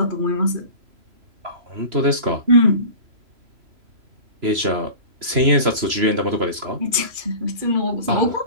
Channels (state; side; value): late; left; 3.0 ms